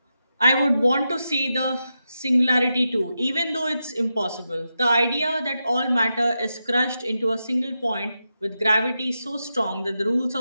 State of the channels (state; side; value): inverted; both; correlation -0.88